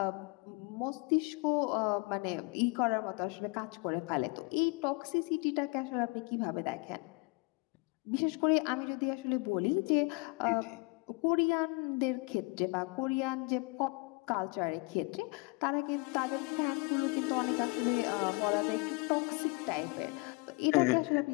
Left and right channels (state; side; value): quieter; right; 28.3 dB